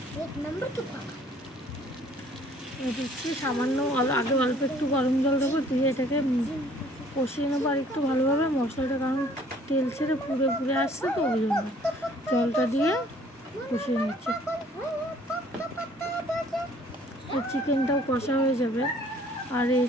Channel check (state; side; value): normal; both; correlation 0.57